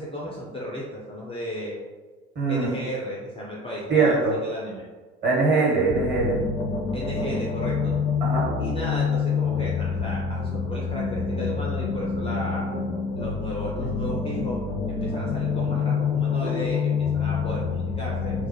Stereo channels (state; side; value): normal; both; correlation 0.44